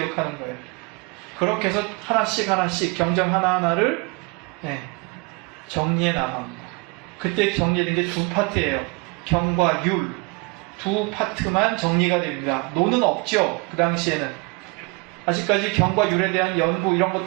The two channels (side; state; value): left; quieter; 29.1 dB